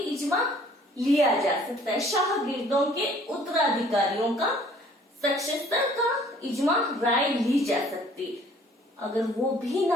लिया जा सकता है। शागिर्दों के उत्तराधिकारियों का, सक्सेसर का इजमा, राय ली जा सकती। अगर वो भी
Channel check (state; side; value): normal; both; correlation 0.56